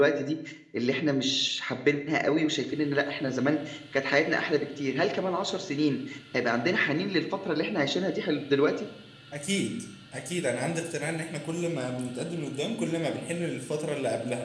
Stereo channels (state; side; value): identical; both; correlation 1.00